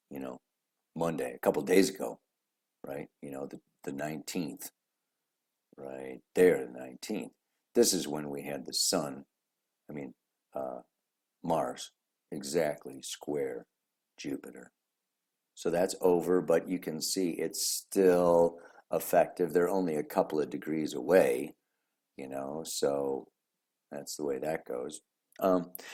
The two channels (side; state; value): both; identical; correlation 1.00